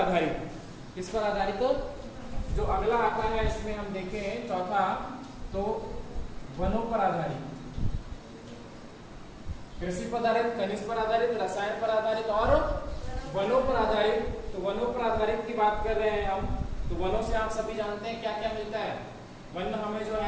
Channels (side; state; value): both; identical; correlation 1.00